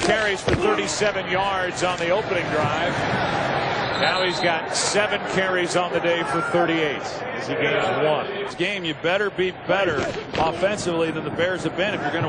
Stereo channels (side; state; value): both; identical; correlation 1.00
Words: carries for 37 yards on the opening drive. Now he's got 7 carries on the day for 38 as he gains 1. This game, you better be better offensively than the Bears have been if you're going